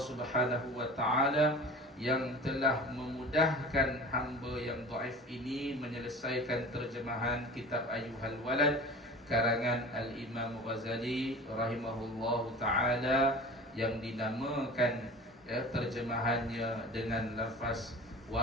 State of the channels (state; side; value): normal; both; correlation 0.37